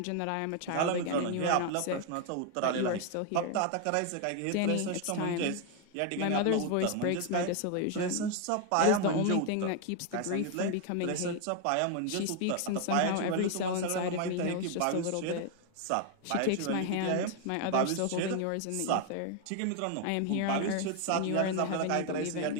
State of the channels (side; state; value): both; different; correlation 0.01